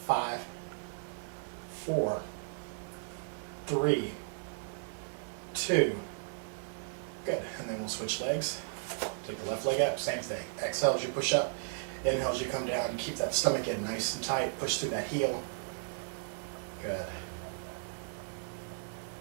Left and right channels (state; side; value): silent; left; 54 dB below the other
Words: 5, 4, 3, 2. Good. And then we'll switch legs. Take the left leg up, same thing. Exhale as you push up. Inhale as you come down. Keep that stomach in nice and tight. Push through that heel. Good.